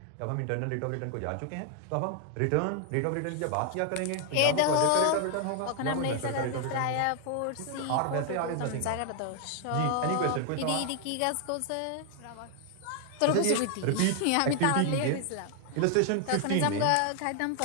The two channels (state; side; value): different; both; correlation 0.00